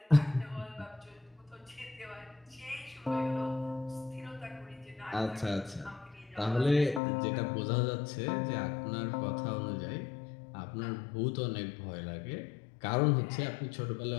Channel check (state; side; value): drops out; right; at 7.0 s